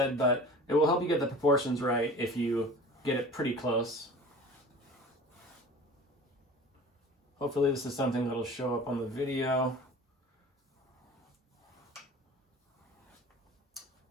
but it will help you get the proportions right if you get it pretty close. Hopefully this is something that'll show up on the video.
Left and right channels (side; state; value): both; normal; correlation 0.40